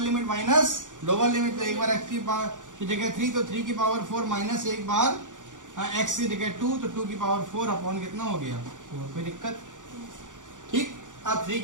minus lower limit, तो एक बार x की पावर की जगह 3, तो 3 की पावर 4 माइनस एक बार x की जगह 2, तो 2 की पावर 4 अपॉन कितना हो गया 4, कोई दिक्कत, ठीक। अब 3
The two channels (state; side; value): late; left; 0.87 ms